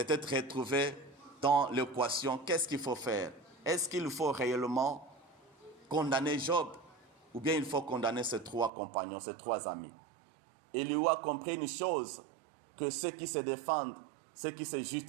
retrouvé dans l'équation. Qu'est-ce qu'il faut faire? Est-ce qu'il faut réellement condamner Job? Ou bien il faut condamner ces trois compagnons, ces trois amis? Élihu a compris une chose, que ceux qui se défendent, ceux qui se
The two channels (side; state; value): left; drops out; at 8.7 s